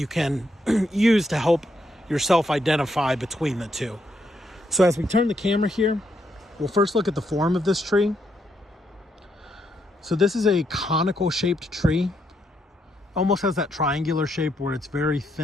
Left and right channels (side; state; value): both; normal; correlation 0.77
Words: can use to help yourself identify between the two. So as we turn the camera here, we'll first look at the form of this tree. So this is a conical shaped tree. Almost has that triangular shape where it's very